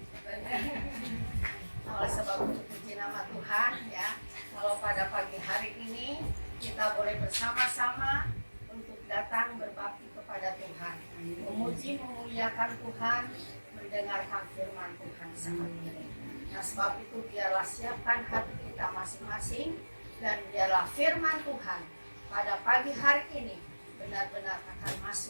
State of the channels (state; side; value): inverted; both; correlation -1.00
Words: Oleh sebab itu puji nama Tuhan ya. Kalau pada pagi hari ini kita boleh bersama-sama untuk datang berbakti kepada Tuhan, memuji memuliakan Tuhan, mendengarkan firman Tuhan saat ini. Nah sebab itu biarlah siapkan hati kita masing-masing dan biarlah firman Tuhan pada pagi hari ini benar-benar akan